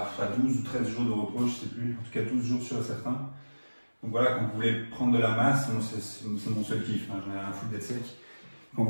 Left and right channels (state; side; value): inverted; both; correlation -1.00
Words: 12 ou 13 jours de repos, je sais plus, en tout cas 12 jours sur certains. Donc voilà, quand vous voulez prendre de la masse, c'est mon seul kiff, hein, j'en ai rien à foutre d'être sec. Quand vous